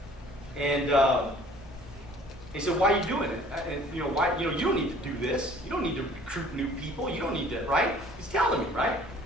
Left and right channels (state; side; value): normal; both; correlation 0.52